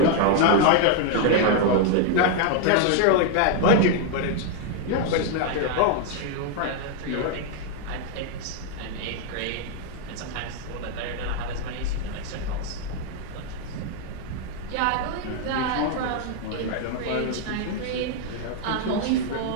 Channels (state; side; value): different; both; correlation 0.00